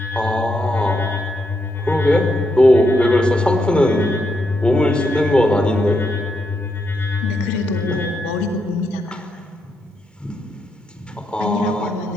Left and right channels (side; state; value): both; normal; correlation 0.81